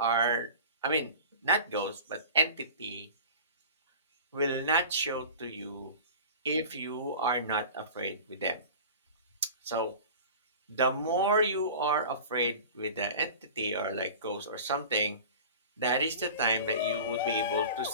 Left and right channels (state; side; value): inverted; both; correlation -0.37